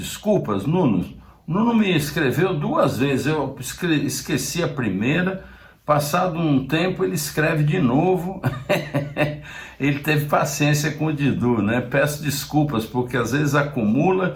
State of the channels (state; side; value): identical; both; correlation 1.00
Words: Nuno. Nuno me escreveu 2 vezes, eu esqueci a primeira, passado um tempo ele escreve de novo. Ele teve paciência com o Didu, né? Peço desculpas, porque às vezes acumula